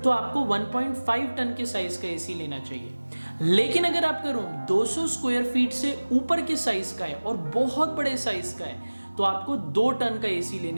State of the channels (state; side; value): inverted; both; correlation -1.00